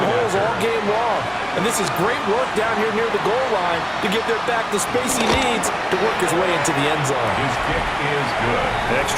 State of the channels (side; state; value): both; identical; correlation 1.00